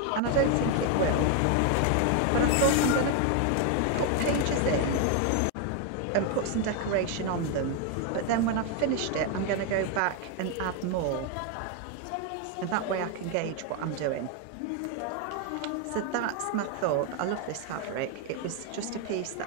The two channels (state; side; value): different; both; correlation 0.01